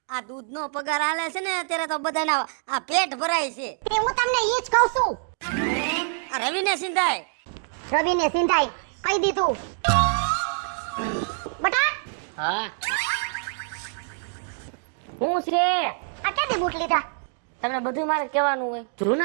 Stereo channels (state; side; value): silent; left; 61 dB below the other